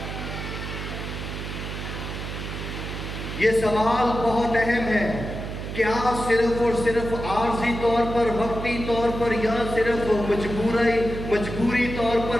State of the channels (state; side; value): noise; right; hum, 7 dB below the sound